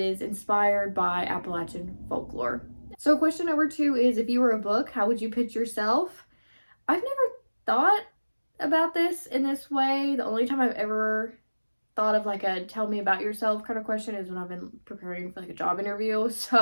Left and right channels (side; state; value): both; inverted; correlation -1.00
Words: inspired by Appalachian folklore. So question number 2 is, if you were a book, how would you pitch yourself? I've never thought about this in this way. The only time I've ever thought of like a tell me about yourself kind of question is when I've been preparing for like a job interview.